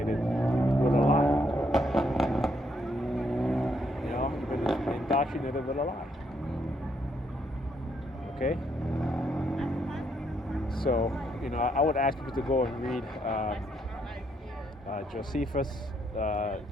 with a lie. You've been indoctrinated with a lie. Okay? So, I would ask people to go and read Josephus,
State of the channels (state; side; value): normal; both; correlation 0.74